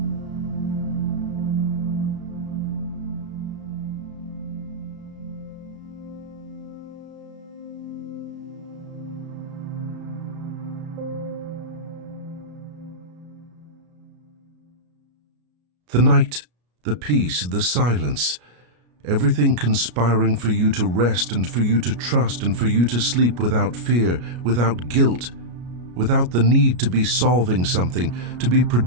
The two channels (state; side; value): late; left; 33 ms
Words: The night, the peace, the silence, everything conspiring for you to rest and for you to trust and for you to sleep without fear, without guilt, without the need to be solving something, to be